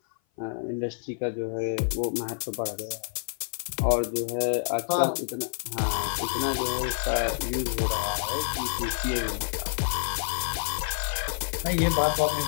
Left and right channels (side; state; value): right; silent; 56 dB below the other